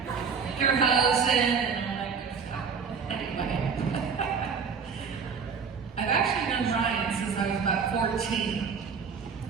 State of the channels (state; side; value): quieter; left; 5.9 dB